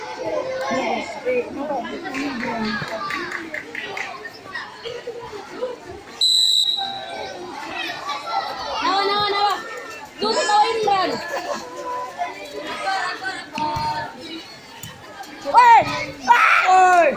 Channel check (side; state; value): both; identical; correlation 1.00